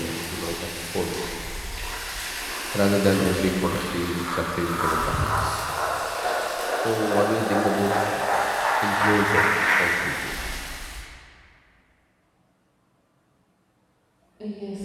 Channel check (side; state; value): both; identical; correlation 1.00